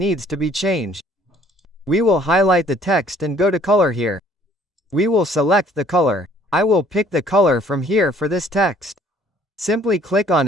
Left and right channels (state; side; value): normal; both; correlation 0.58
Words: to be changed. We will highlight the text and go to color here. We will select the color. I will pick the color from here for this text. Simply click on